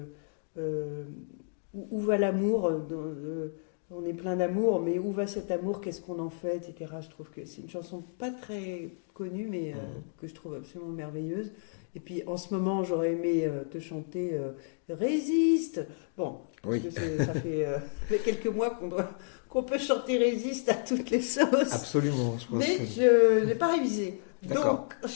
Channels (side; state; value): right; silent; digital silence